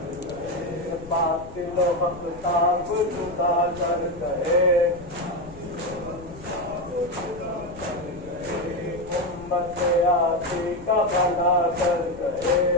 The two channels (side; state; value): left; noise; rumble, 19 dB below the sound